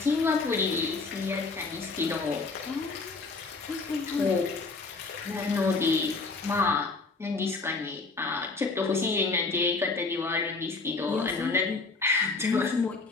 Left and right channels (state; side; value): quieter; right; 4.0 dB